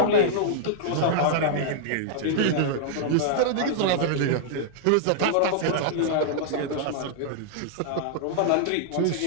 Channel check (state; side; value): different; both; correlation -0.01